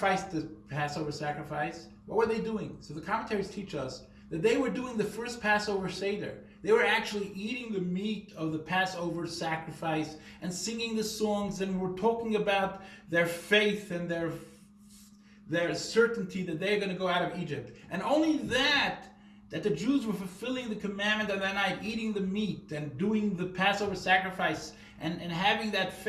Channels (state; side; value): identical; both; correlation 1.00